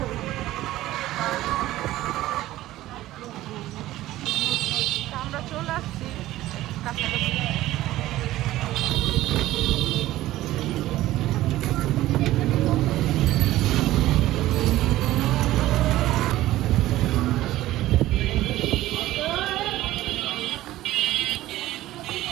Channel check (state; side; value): quieter; left; 15.6 dB